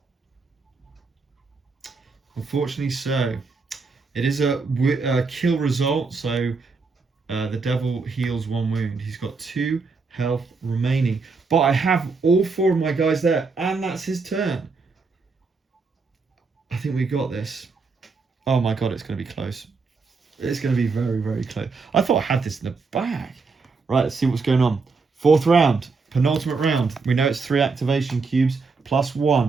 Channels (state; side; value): quieter; left; 4.4 dB